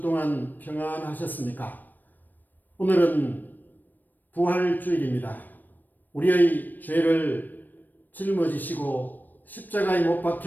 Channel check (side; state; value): right; late; 0.088 ms